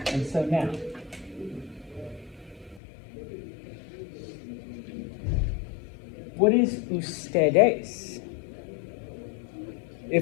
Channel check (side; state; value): right; drops out; at 2.8 s